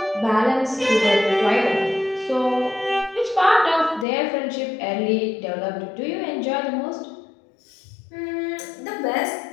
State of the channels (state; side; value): drops out; right; at 4.0 s